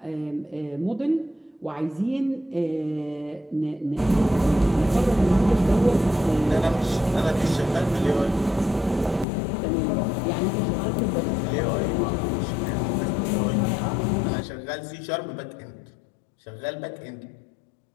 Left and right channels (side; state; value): right; drops out; at 9.2 s